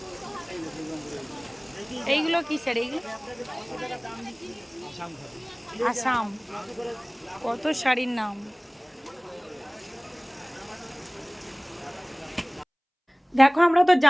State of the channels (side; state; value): both; identical; correlation 1.00